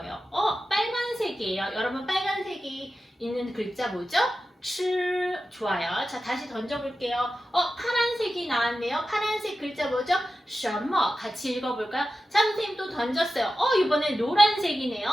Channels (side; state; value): both; normal; correlation 0.93